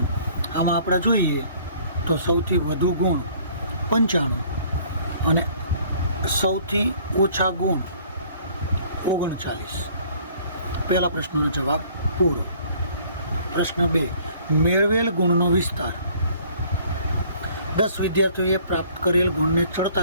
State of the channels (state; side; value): inverted; both; correlation -0.56